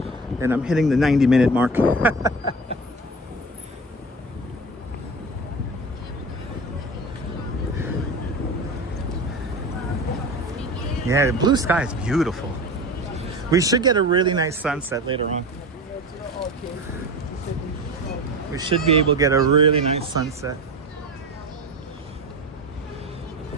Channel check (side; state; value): both; normal; correlation 0.30